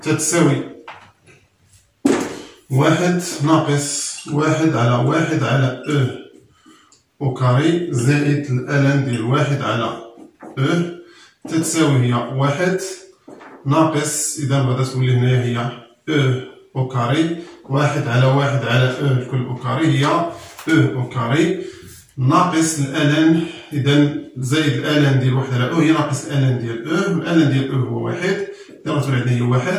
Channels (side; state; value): both; identical; correlation 1.00